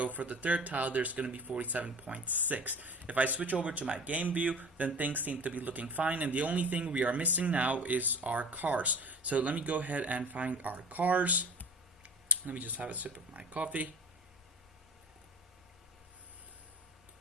for the 3rd tile, there's going to be 47.6. If I switch over to my game view, then things seem to be looking fine, and the only thing we are missing now is our cars. So let me go ahead and find our cars. Let me just have a sip of my coffee.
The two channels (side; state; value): both; normal; correlation 0.38